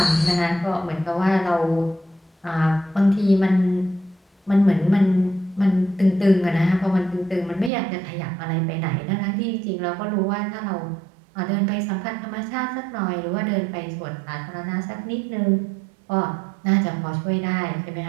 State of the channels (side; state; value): left; drops out; at 7.7 s